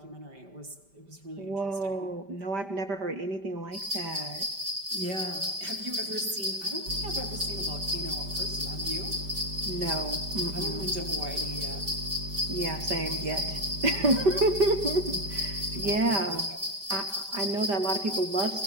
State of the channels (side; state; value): left; late; 5.1 ms